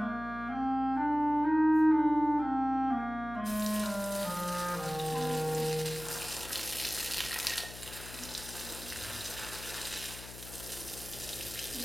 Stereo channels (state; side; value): noise; left; hum, 14 dB below the sound